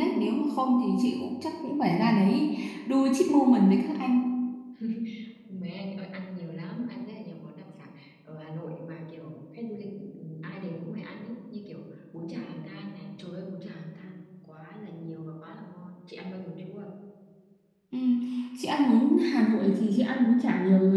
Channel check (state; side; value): identical; both; correlation 1.00